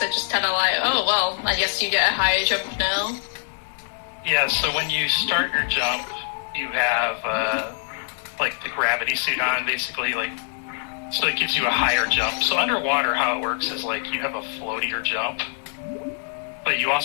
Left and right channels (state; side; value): silent; right; digital silence